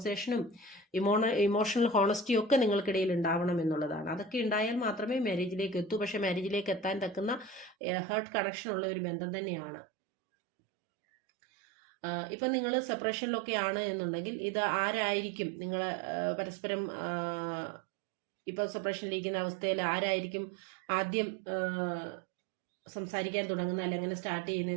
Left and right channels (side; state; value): left; drops out; at 7.8 s